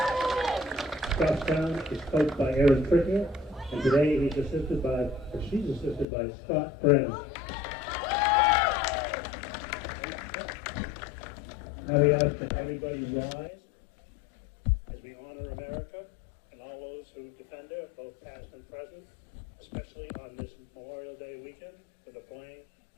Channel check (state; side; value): drops out; right; at 6.1 s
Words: Goffstown is coached by Aaron Trickier, and today she's assisted by Scott Brennan. Now we ask that everybody rise as we honor America and all those who defend her, both past and present, especially on this Memorial Day weekend with the playing